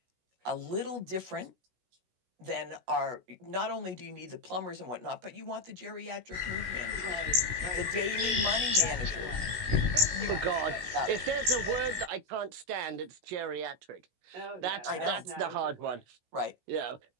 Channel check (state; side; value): late; left; 16 ms